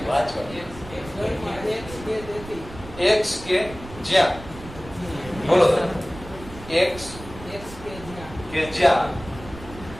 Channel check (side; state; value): right; noise; rumble, 15 dB below the sound